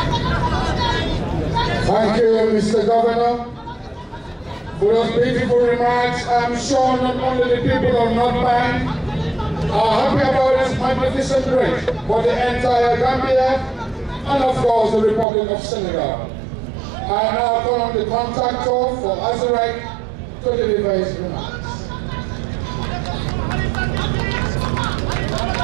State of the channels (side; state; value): left; drops out; at 15.2 s